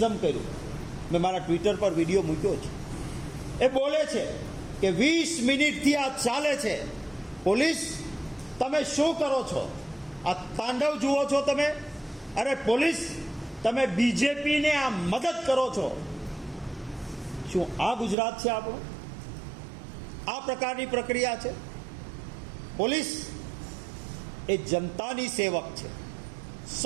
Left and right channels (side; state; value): left; drops out; at 18.2 s